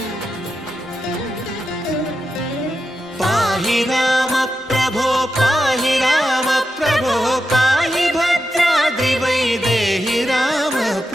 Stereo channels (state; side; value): normal; both; correlation 0.88